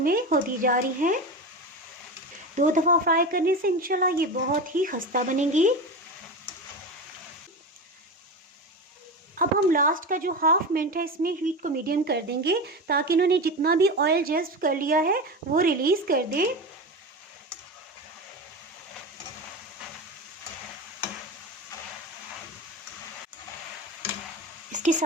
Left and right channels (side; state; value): both; normal; correlation 0.23